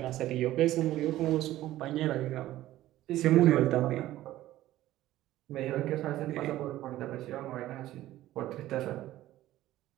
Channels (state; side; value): quieter; left; 14.8 dB